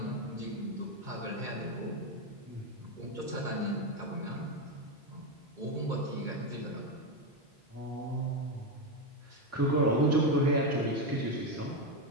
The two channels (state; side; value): normal; both; correlation 0.09